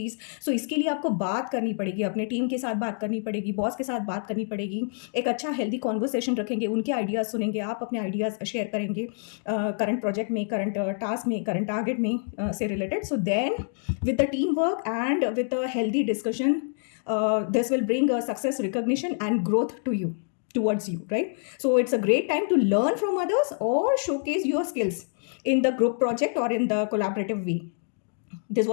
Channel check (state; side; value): silent; right; 60 dB below the other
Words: So इसके लिए आपको बात करनी पड़ेगी, अपने टीम के साथ बात करनी पड़ेगी, बॉस के साथ बात करनी पड़ेगी, एक अच्छा हेल्दी कॉन्वर्सेशन रखेंगे, उनके आइडियाज़ सुनेंगे, आप अपने आइडियाज़ शेयर करेंगे करंट प्रोजेक्ट में, करंट टास्क में, करंट टारगेट में से related. So then with the team work and with a healthy discussion, this will bring a success, recognition and growth to you, towards you, right? So it's a great time to learn from others or showcase your skills in the group project or in the collaborative way. This